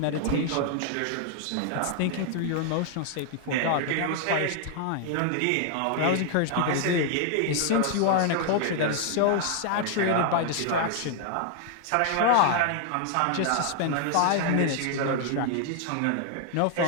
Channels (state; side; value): different; both; correlation 0.00